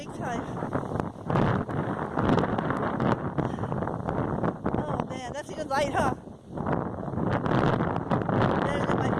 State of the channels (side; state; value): both; identical; correlation 1.00